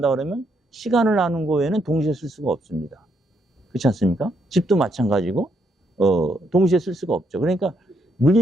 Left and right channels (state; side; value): normal; both; correlation 0.75